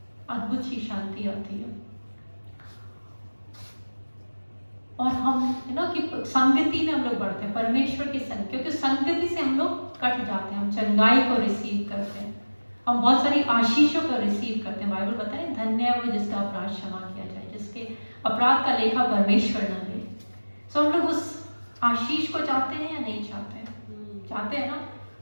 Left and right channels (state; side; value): inverted; both; correlation -1.00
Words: अद्भुत सी शांति आती है। और हम कि संगति में हम लोग बढ़ते हैं, परमेश्वर की संगति, क्योंकि संगति से हम लोग कट जाते हैं, हम चंगाई को रिसीव करते हैं, हम बहुत सारी आशीषों को रिसीव करते हैं। बाइबल बताता है धन्य है वो जिसका अपराध क्षमा किया जाए, जिसके अपराध का लेखा परमेश्वर न ले। सो हम लोग उस आशीष को चाहते हैं या नहीं चाहते हैं? चाहते हैं ना।